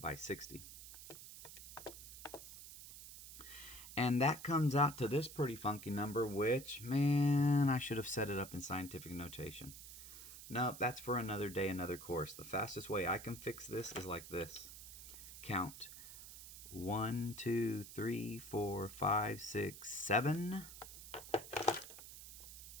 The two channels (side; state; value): right; noise; hiss, 13 dB below the sound